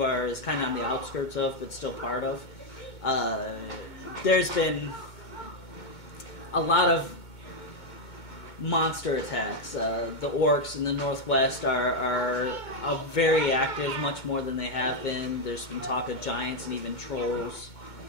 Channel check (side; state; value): right; late; 2.2 ms